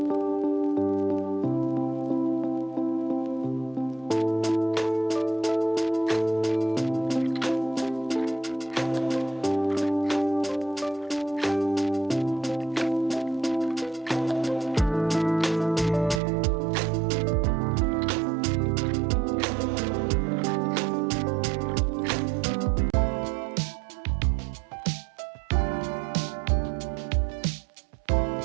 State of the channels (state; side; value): drops out; left; at 16.2 s